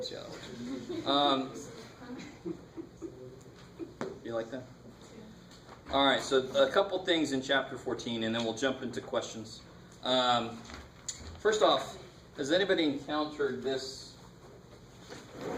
see how that works. You like that? All right, so a couple things in chapter 14, and then we'll jump into questions. First off, has anybody encountered this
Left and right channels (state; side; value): identical; both; correlation 1.00